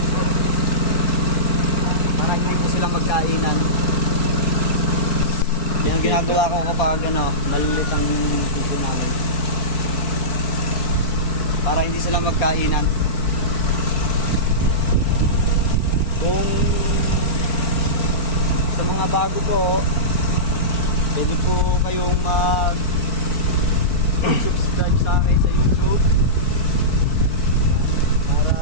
para hindi po silang magkainan. Yan ang ginagawa ko kapag malilit ang puso namin para hindi sila magkainan. Kung sa mga bago po, pwede po kayong subscribe sa akin sa YouTube para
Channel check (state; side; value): late; right; 4.5 ms